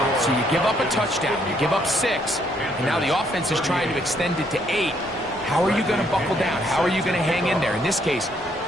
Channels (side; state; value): both; normal; correlation 0.70